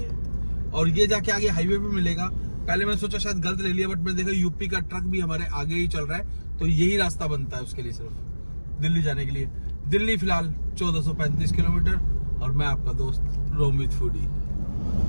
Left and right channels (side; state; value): both; inverted; correlation -1.00